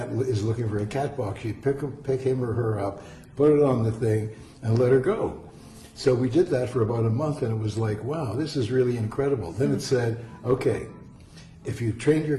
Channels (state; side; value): identical; both; correlation 1.00